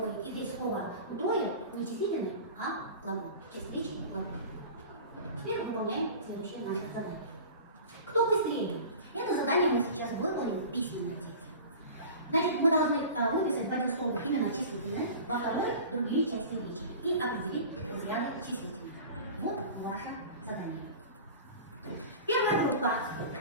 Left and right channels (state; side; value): inverted; both; correlation -0.38